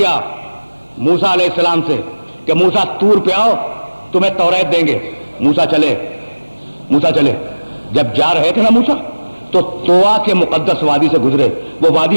موسیٰ علیہ السلام سے کہ موسیٰ طور پہ آؤ تمہیں توریت دیں گے. موسیٰ چلے. جب جا رہے تھے نا موسیٰ تو طوا کے مقدس وادی سے گزرے. وہ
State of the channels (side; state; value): both; inverted; correlation -1.00